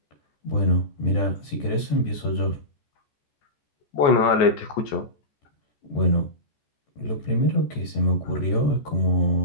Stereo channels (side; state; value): right; late; 14 ms